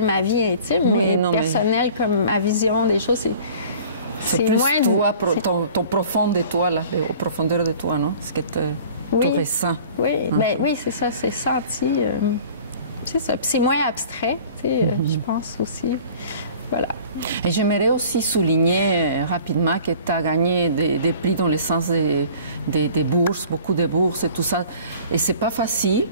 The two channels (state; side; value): inverted; both; correlation -0.47